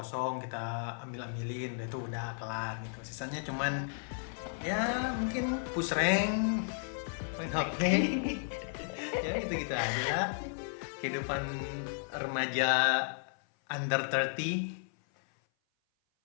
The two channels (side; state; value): right; silent; 55 dB below the other